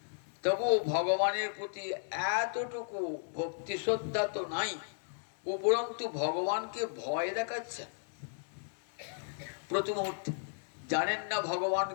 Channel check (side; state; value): right; silent; digital silence